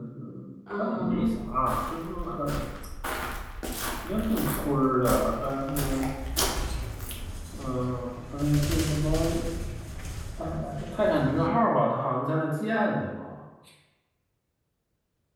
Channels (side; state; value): both; identical; correlation 1.00